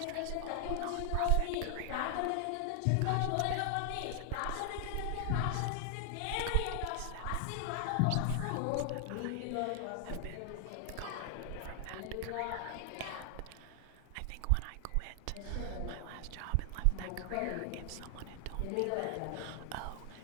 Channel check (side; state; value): both; different; correlation 0.00